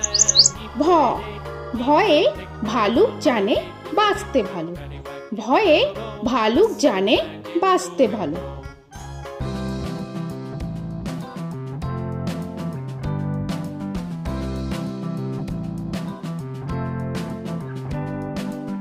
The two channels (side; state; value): both; identical; correlation 1.00